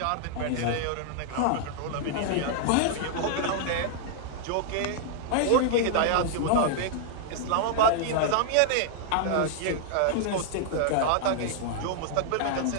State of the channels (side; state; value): both; different; correlation -0.01